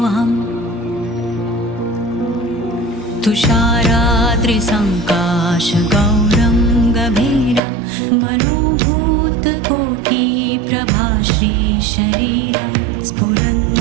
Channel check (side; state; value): left; drops out; at 7.6 s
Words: तुषाराद्रिसङ्काशगौरं गभीरं मनोभूतकोटिप्रभाश्रीशरीरं